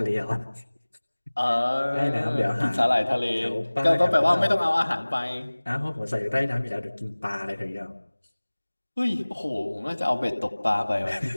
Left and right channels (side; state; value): both; inverted; correlation -1.00